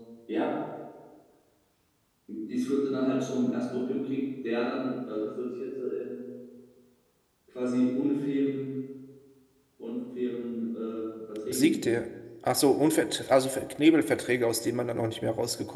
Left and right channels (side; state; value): both; identical; correlation 1.00